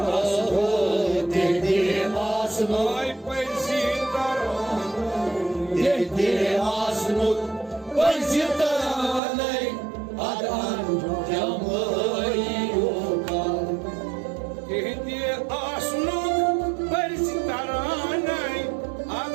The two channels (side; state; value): left; drops out; at 9.2 s